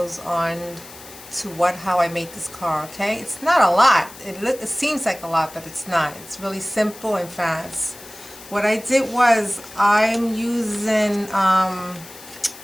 on how I made this card. Okay, it's not a lot. It seems like a lot, but it's not. It's really simple and fast. What I did was I'm using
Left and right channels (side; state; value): left; noise; hiss, 18 dB below the sound